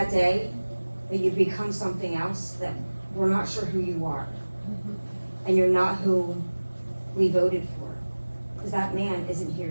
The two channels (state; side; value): inverted; both; correlation -1.00